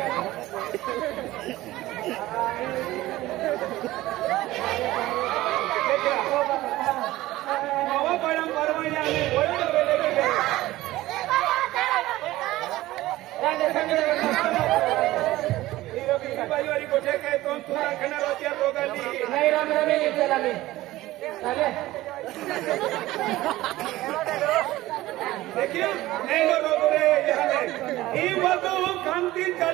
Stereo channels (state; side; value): quieter; left; 16.9 dB